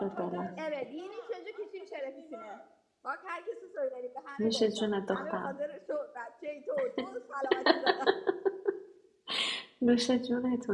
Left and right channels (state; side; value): identical; both; correlation 1.00